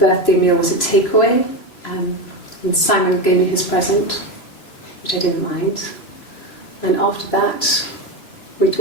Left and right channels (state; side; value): late; right; 3.0 ms